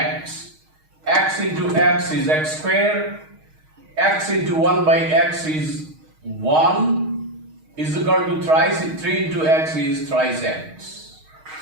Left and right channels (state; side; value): late; left; 6.4 ms